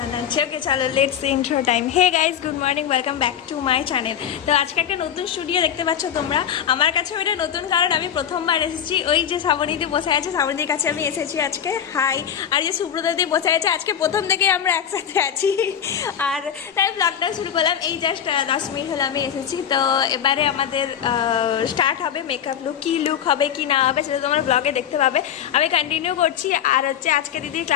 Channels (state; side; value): quieter; right; 9.0 dB